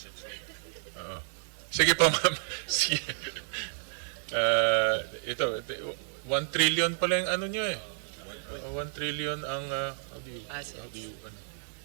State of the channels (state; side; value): silent; left; 57 dB below the other